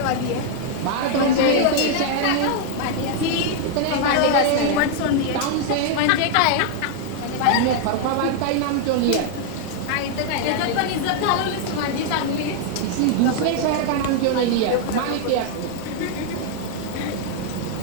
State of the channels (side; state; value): both; different; correlation 0.00